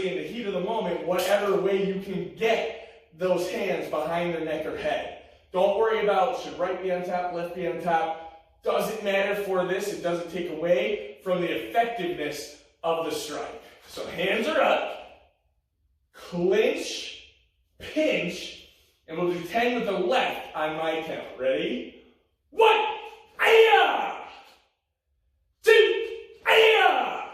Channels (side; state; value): both; identical; correlation 1.00